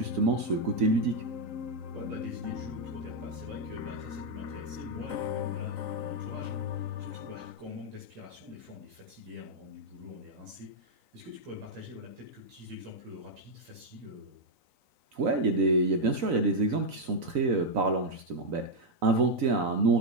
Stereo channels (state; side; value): late; left; 3.9 ms